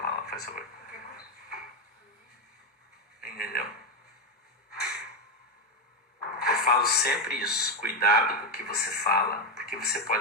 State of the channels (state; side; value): normal; both; correlation 0.08